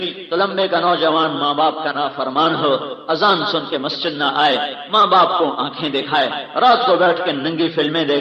تلمبے کا نوجوان ماں باپ کا نافرمان ہو، اذان سن کے مسجد نہ آئے، ماں باپ کو آنکھیں دکھائے، رات کو بیٹھ کے ننگی فلمیں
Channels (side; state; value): both; identical; correlation 1.00